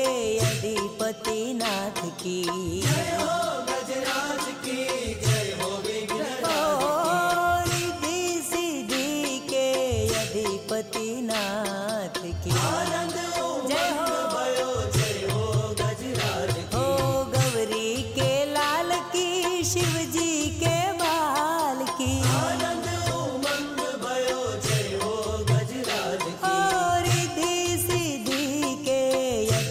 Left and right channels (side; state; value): both; identical; correlation 1.00